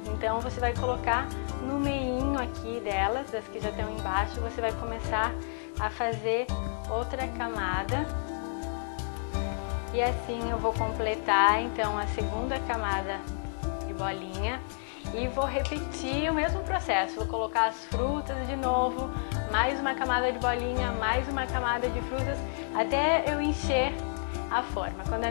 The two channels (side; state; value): right; silent; digital silence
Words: Então você vai colocar no meinho aqui delas, das que já estão embaixo, você vai começar a fazer outra camada. E assim eu vou completar então a segunda camada de bolinha e vou repetir o mesmo processo. Vou colocar as frutas de novo, mais uma camada de bolinha, mais uma camada de frutas, até eu encher a forma. Quando a